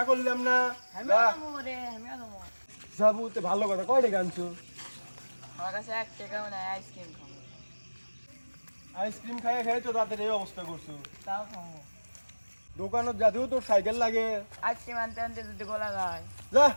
করলাম না। আমিও যাবো রে, আমিও যাবো। যাবো তো ভালো কথা, কয় টাকা আনছো? আমার কাছে 1 টাকাও নাই, আইসক্রিম খাবো। আইসক্রিম খাই খাই তো রাতের এই অবস্থা করছো। তাও খাবো। দোকানত যাতেও তোর সাইকেল লাগে। আইসক্রিম আনতে আনতে যদি গলা যায়। যা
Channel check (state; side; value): inverted; both; correlation -1.00